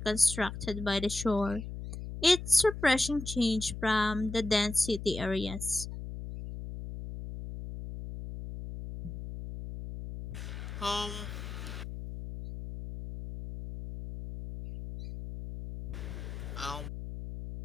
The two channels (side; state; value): left; noise; hum, 8 dB below the sound